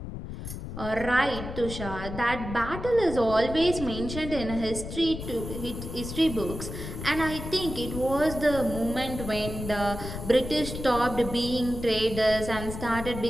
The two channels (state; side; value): noise; left; rumble, 8 dB below the sound